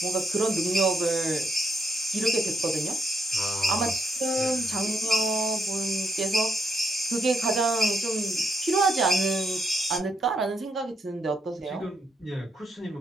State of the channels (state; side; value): normal; both; correlation 0.77